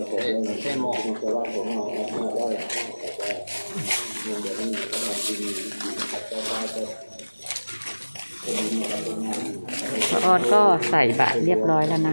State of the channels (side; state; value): both; inverted; correlation -1.00